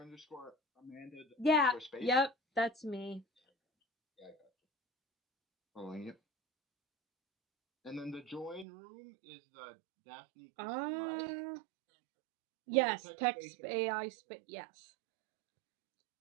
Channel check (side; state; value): left; drops out; at 8.7 s